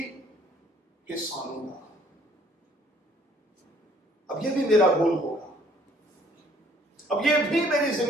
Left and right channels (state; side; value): normal; both; correlation 0.61